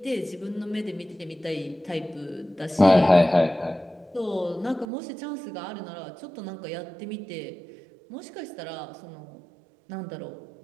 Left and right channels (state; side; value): drops out; left; at 4.9 s